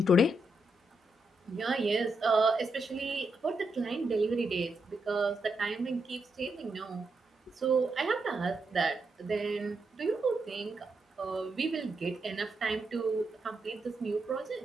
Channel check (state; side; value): normal; both; correlation 0.83